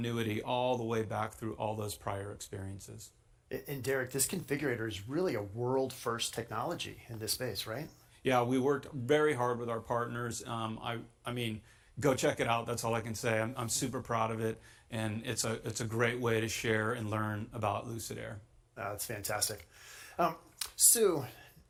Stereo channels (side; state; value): both; identical; correlation 1.00